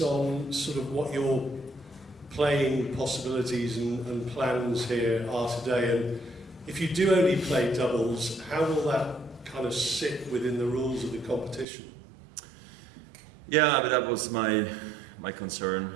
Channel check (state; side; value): drops out; left; at 11.7 s